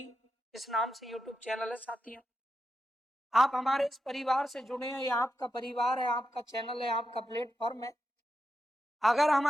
इस नाम से यूट्यूब चैनल है साथियों। आप हमारे इस परिवार से जुड़े हैं, ये आपका परिवार है, आपका चैनल है, आपका प्लेटफॉर्म है। अगर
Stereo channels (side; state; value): both; normal; correlation 0.88